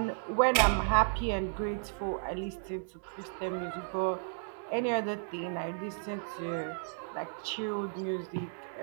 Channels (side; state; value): left; silent; digital silence